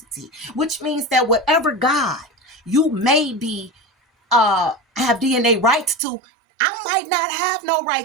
which means that whatever God you may be have DNA rights to, I might not have no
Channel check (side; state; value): left; drops out; at 6.0 s